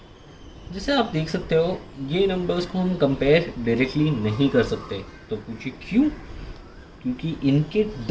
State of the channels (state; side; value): identical; both; correlation 1.00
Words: जैसे आप देख सकते हो ये नंबर्स को हम कंपेयर डायरेक्टली नहीं कर सकते। तो पूछिए क्यों? क्योंकि इनके